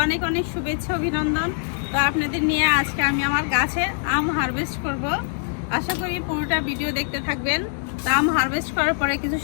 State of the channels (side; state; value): right; silent; 63 dB below the other